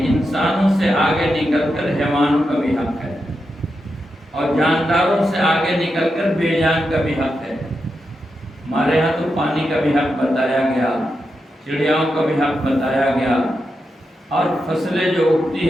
انسانوں سے آگے نکل کر حیوانوں کا بھی حق ہے، اور جانداروں سے آگے نکل کر بے جان کا بھی حق ہے۔ ہمارے ہاں تو پانی کا بھی حق بتایا گیا، چڑیاؤں کا بھی حق بتایا گیا، اور فصلیں جو اگتی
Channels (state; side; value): normal; both; correlation 0.87